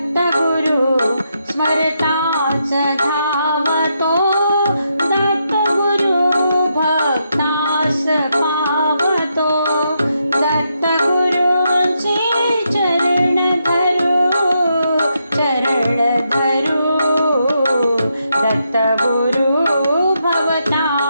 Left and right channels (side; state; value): both; inverted; correlation -0.81